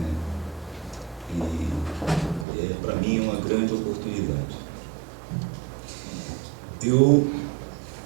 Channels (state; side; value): drops out; left; at 2.5 s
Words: e para mim é uma grande oportunidade. Eu